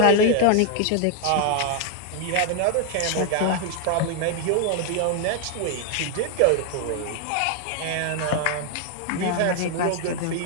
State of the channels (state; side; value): different; both; correlation 0.00